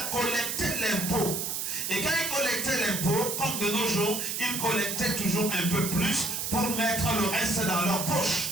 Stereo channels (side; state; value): right; noise; hiss, 2 dB below the sound